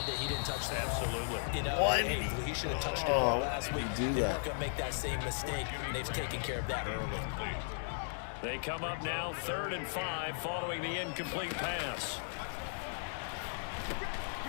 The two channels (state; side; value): silent; right; digital silence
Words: that he didn't touch the ball? Absolutely. You know, hey, he should have touched it last week. Do they that. weren't going to make that same mistake, and they've taken care of that early. They come up now 3rd and 5 following the incomplete pass.